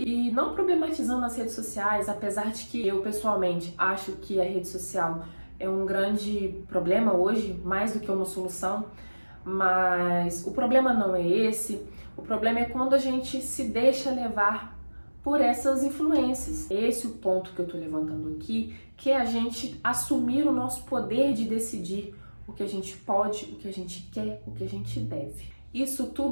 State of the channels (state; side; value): inverted; both; correlation -1.00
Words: não problematizando as redes sociais, apesar de que eu pessoalmente acho que a rede social é um grande problema hoje, mais do que uma solução, mas o problema não é esse. O problema é quando a gente se deixa levar por essas influências. Esse é o ponto que eu tô levantando aqui, que é a gente assumir o nosso poder de decidir o que a gente pode, o que a gente quer, o que a gente deve. Isso